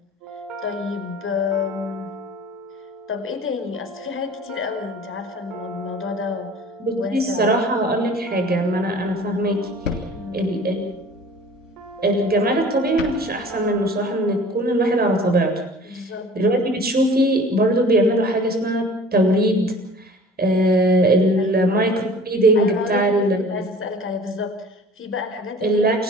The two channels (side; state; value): both; normal; correlation 0.46